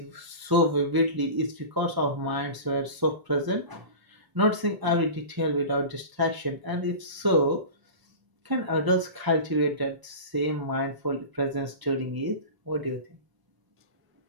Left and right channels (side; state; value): left; late; 1.0 ms